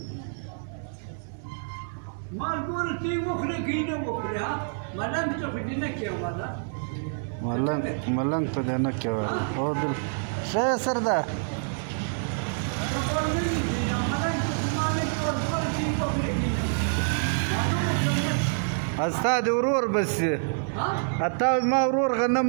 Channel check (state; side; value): silent; left; 60 dB below the other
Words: ما نقول تي وخري كينا وخري ها ما لم تخدينا كيا ولا ملنگ تو دینا کیا او دل شاید سر ده استا دی ورور بس اتا ما ورور غنم